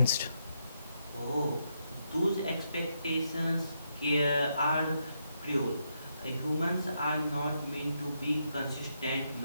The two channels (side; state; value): both; inverted; correlation -0.80